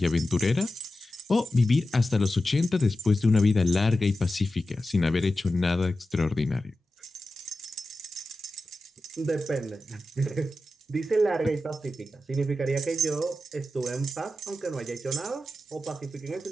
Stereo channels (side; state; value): both; normal; correlation 0.92